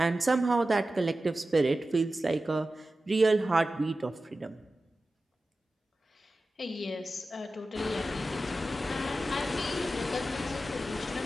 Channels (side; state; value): both; normal; correlation 0.94